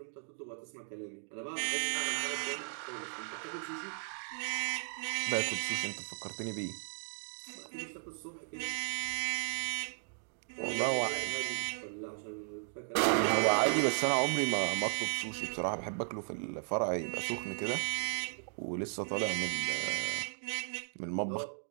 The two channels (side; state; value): left; silent; digital silence